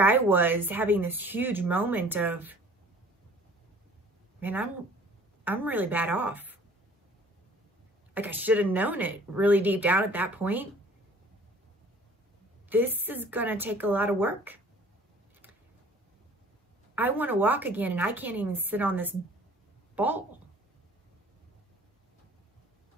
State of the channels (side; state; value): both; normal; correlation 0.51